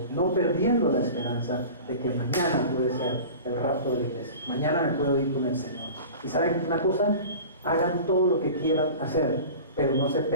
no perdiendo la esperanza de que mañana puede ser el rapto de la iglesia. Mañana me puedo ir con el Señor. Y ¿saben una cosa? Hagan todo lo que quieran hacer, pero no se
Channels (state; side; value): inverted; both; correlation -0.37